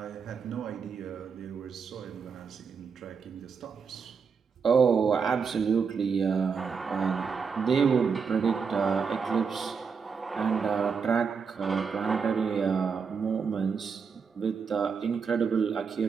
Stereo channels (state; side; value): quieter; left; 5.8 dB